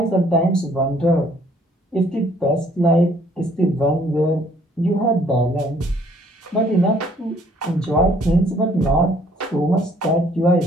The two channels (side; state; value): both; normal; correlation 0.62